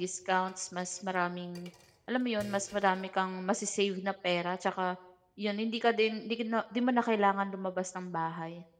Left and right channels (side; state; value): both; identical; correlation 1.00